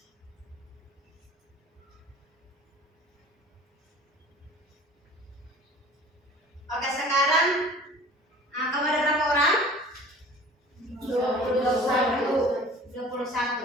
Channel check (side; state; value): both; normal; correlation 0.46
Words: oke, sekarang kamu ada berapa orang?